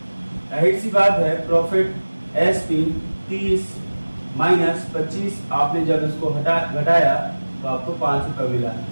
जाहिर सी बात है प्रॉफिट एसपी 30 माइनस 25, आपने जब इसको घटाया तो आपको 5 रुपए मिला।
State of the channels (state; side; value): inverted; both; correlation -1.00